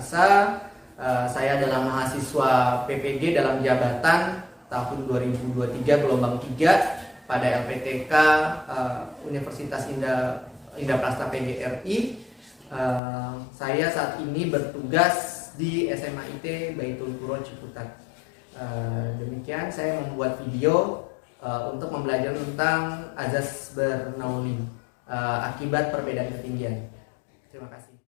Saya adalah mahasiswa PPG dalam jabatan tahun 2023 gelombang 3 pada LPTK Universitas Indah PGRI. Saya saat ini bertugas di SMA IT Baitul Quro Ciputat. Demikian saya membuat video untuk membelajar tentang azas Bernoulli. Akibat perbedaan ketinggian. Terima kasih.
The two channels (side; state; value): right; drops out; at 13.0 s